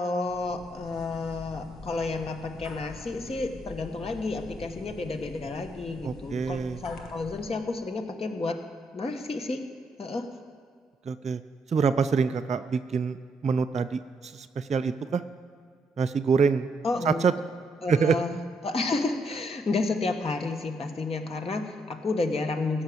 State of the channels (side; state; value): both; normal; correlation 0.75